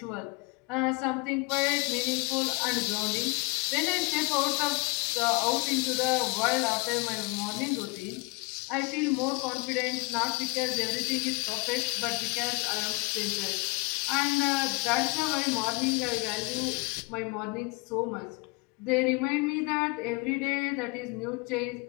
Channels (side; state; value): right; quieter; 28.4 dB